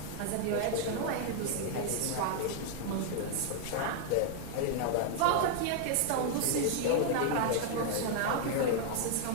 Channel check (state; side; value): different; both; correlation 0.00